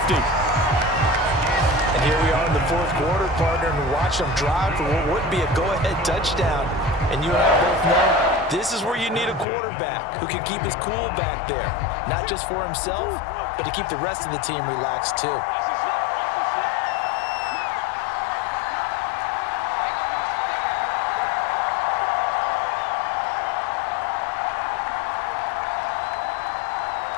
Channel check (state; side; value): drops out; right; at 9.5 s